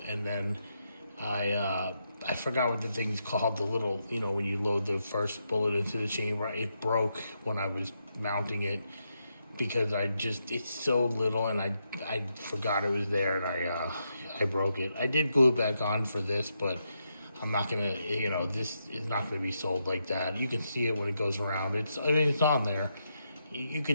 and then I forgot what the thing's called, the little, when you load the first bullet into the chamber. It broke when I was mounting it because it's so little, and I forgot it was there, and I broke it. I did glue it back on for this, but I'm not gonna, this is not gonna be sold like that. You can see it when it goes around. It's on there. You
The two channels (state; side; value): inverted; both; correlation -0.82